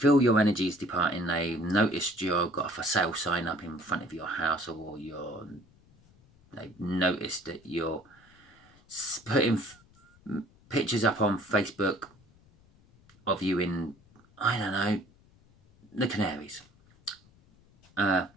your energy is departing. They've noticed you've got a for sale sign up in front of your house, or they've noticed that you're putting pictures up on Facebook of you in, I don't know, the Canaries. And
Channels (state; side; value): noise; left; rumble, 29 dB below the sound